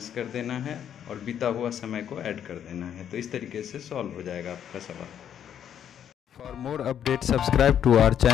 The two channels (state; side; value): quieter; right; 9.3 dB